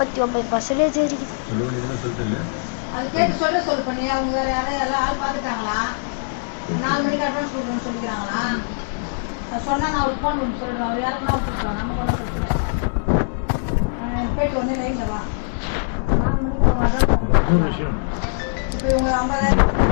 49% இருக்குது. அது கேட்டு சொல்லு பண்ணி அவங்க வேற யாரும் எல்லாம் ஆள் பார்த்துட்டாங்களா? 4 மணிக்கு அட்வான்ஸ் கொடுக்கணும்னு சொல்லிக்கிறாங்களா? அது சொன்னால் நான் ஒரு ஃபோன் பண்ணி சொல்லுவேன். அவர் யாருக்குன்னா விட்டுருக்கோம். நம்ம ஒன்றும் பிரச்சனை கேட்டு உடனே லைனில் வா. 4 மணிக்கு அவங்க அட்வான்ஸ் இப்போ இவங்க 50,000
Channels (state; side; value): silent; right; digital silence